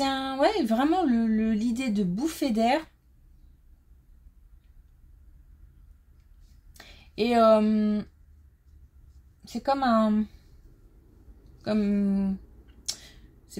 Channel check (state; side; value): identical; both; correlation 1.00